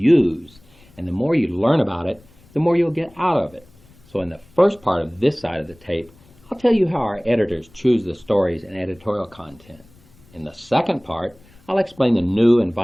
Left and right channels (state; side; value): noise; left; rumble, 28 dB below the sound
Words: And the more you learn about it, the more you'll get out of it. So in the first part of this side of the tape, I'll tell you how our editors choose the stories and editorial content. In the second part, I'll explain the new and